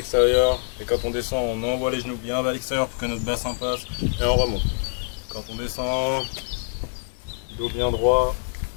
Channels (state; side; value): silent; right; digital silence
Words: Et quand on descend, on envoie les genoux bien vers l'extérieur pour que notre bassin passe. Et on remonte. Quand on descend, dos bien droit.